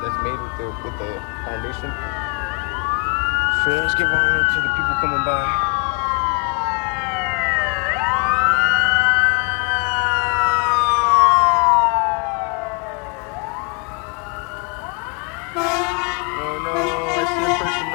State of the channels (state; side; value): quieter; right; 33.6 dB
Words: made with the foundation. So let's give honor to the people coming by. Oh no, I see a person